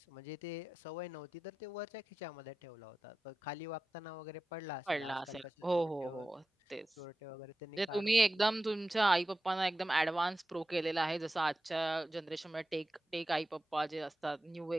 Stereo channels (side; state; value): both; normal; correlation 0.94